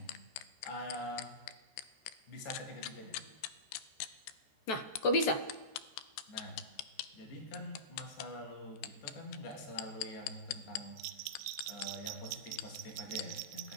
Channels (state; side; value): late; right; 14 ms